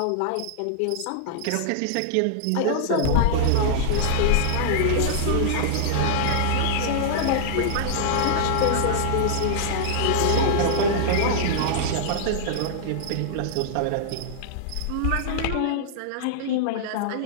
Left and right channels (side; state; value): both; different; correlation -0.01